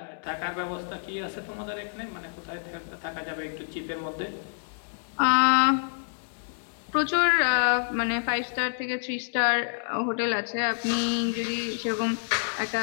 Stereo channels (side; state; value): right; silent; digital silence